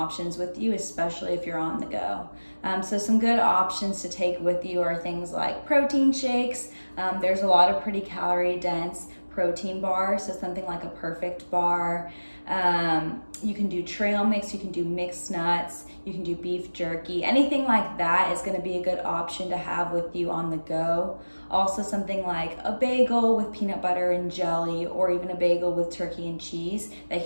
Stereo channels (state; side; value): inverted; both; correlation -1.00